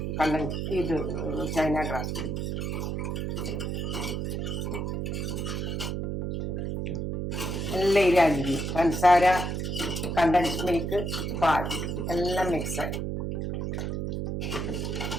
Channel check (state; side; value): noise; right; hum, 2 dB below the sound